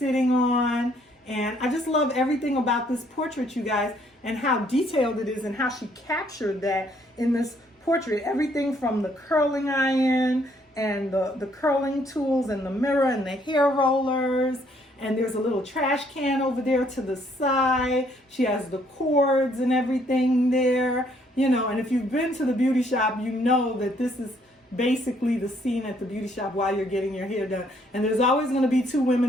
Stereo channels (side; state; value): both; normal; correlation 0.67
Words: on. And I just love everything about this portrait, you guys, and how detailed it is and how she captured that in this portrait. Everything from the curling iron and the curling tools and the mirror and the hair rollers. And there's a little trash can over there to the side. She has the cords and everything there, and if you've been to the beauty shop, you know that this is basically the scene at the beauty shop while you're getting your hair done. And there's always going to be two